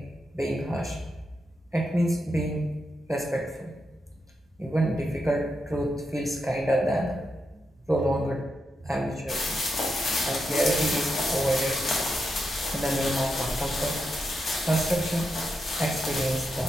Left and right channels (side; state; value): both; normal; correlation 0.85